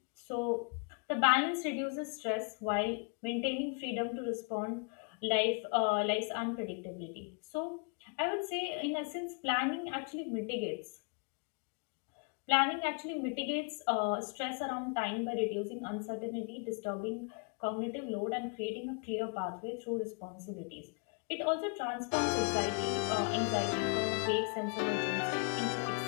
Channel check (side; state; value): right; quieter; 38.6 dB